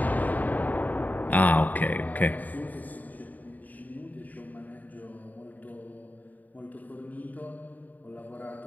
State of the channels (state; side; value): late; right; 0.080 ms